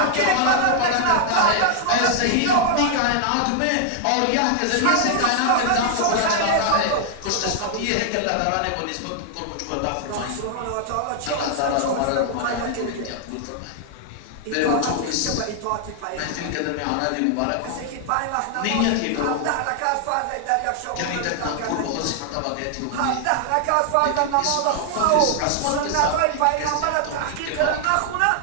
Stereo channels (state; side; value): different; both; correlation 0.00